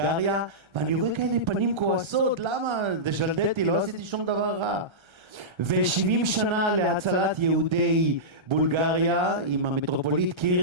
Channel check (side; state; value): left; late; 1.3 ms